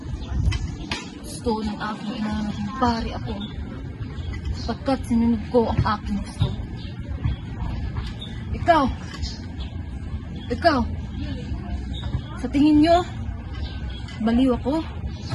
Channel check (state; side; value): identical; both; correlation 1.00